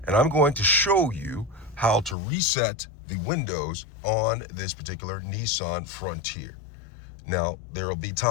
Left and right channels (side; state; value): right; drops out; at 2.1 s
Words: and I'm going to show you how to reset the windows on this particular Nissan Frontier. Now, there will be